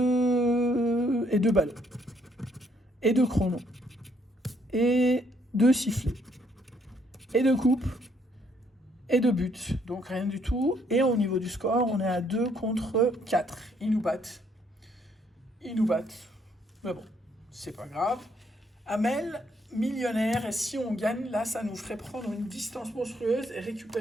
ballons. Et 2 chronos. Et 2 sifflets. Et 2 coupes. Et 2 buts. Donc, rien du tout. Et au niveau du score, on est à 2 contre 4. Ils nous battent. Mais bon, c'est pas grave. Amel, millionnaire, et si on gagne, là, ça nous ferait prendre une distance monstrueuse et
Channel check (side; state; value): both; normal; correlation 0.69